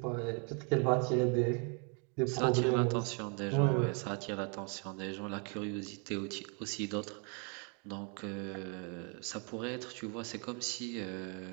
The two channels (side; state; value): left; quieter; 36.9 dB